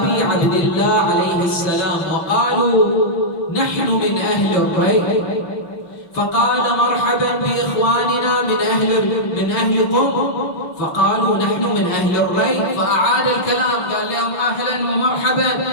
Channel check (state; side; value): late; right; 5.9 ms